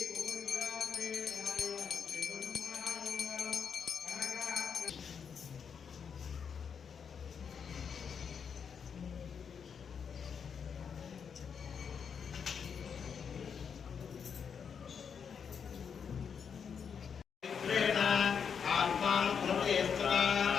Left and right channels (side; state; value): right; quieter; 6.8 dB